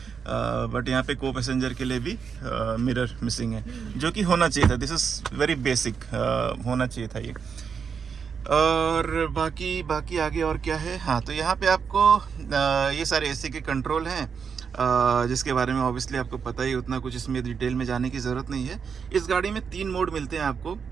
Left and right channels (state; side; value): quieter; left; 6.4 dB